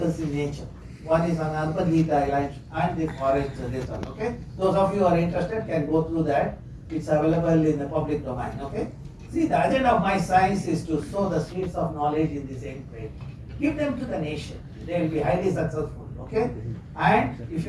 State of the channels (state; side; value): identical; both; correlation 1.00